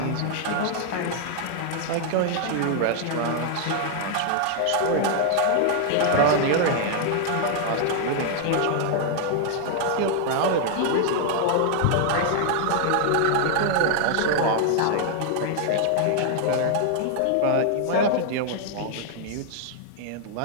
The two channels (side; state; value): both; different; correlation 0.00